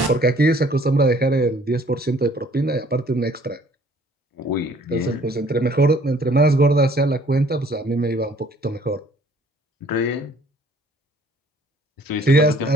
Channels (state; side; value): normal; both; correlation 0.57